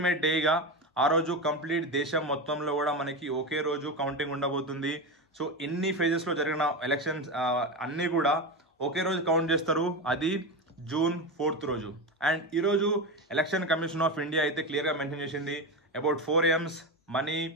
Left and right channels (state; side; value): normal; both; correlation 0.18